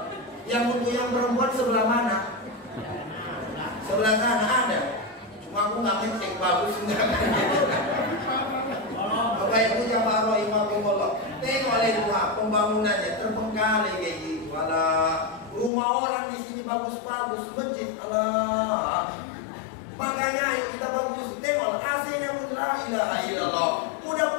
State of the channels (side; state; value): right; drops out; at 15.7 s